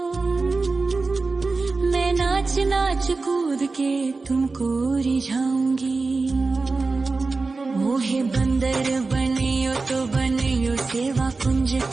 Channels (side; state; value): left; quieter; 3.9 dB